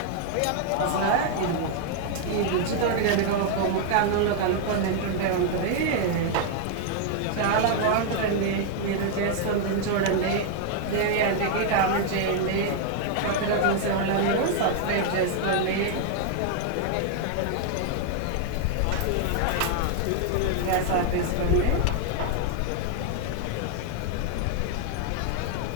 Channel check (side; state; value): both; different; correlation 0.00